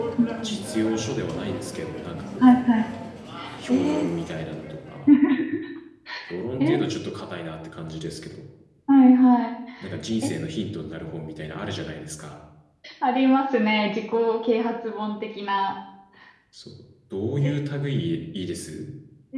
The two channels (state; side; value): identical; both; correlation 1.00